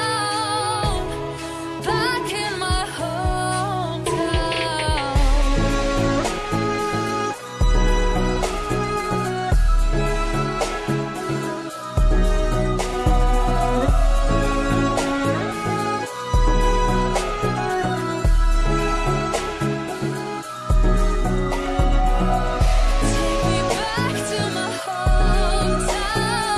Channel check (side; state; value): both; identical; correlation 1.00